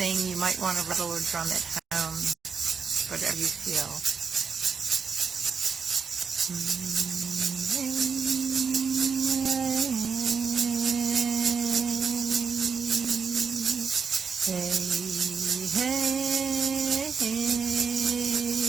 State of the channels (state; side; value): quieter; left; 5.8 dB